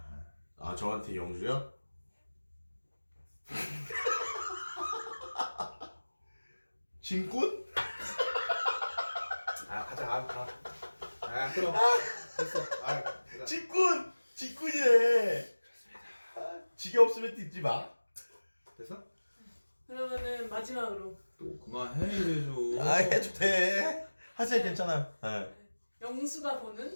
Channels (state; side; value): inverted; both; correlation -1.00